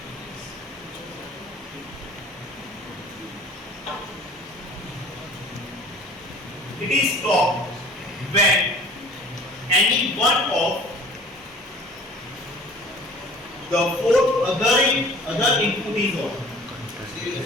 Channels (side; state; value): both; normal; correlation 0.47